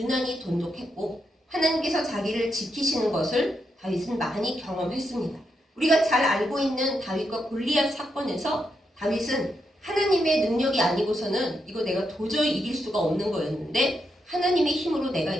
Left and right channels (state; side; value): normal; both; correlation 0.82